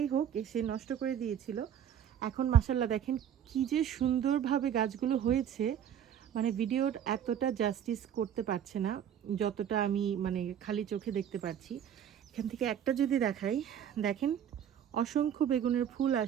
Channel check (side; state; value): left; quieter; 9.3 dB